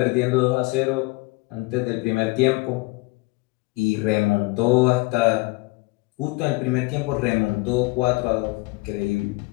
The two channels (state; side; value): quieter; right; 24.1 dB